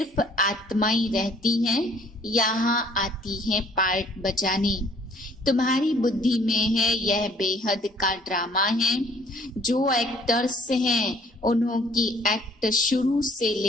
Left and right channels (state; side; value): normal; both; correlation 0.58